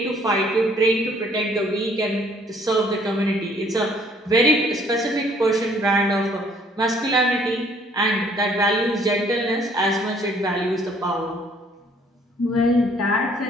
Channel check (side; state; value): both; normal; correlation 0.61